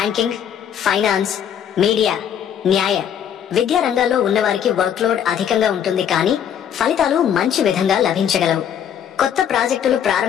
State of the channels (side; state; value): right; quieter; 9.1 dB